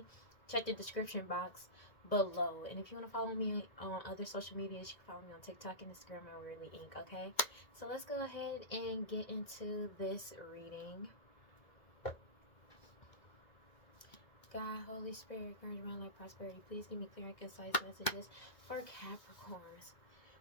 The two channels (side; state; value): right; late; 2.2 ms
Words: check the description box below. And if you want to follow me on other social medias, you can follow me on TikTok and Instagram at WeirdLee Inc. Okay? So let's go ahead and get into this reading. God, Holy Spirit, encouragement, life, prosperity. Please give me clear and concise messages for Capricorns.